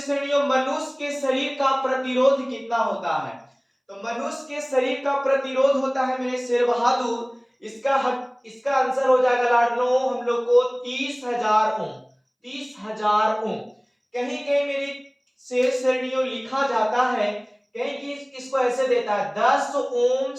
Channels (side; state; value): both; identical; correlation 1.00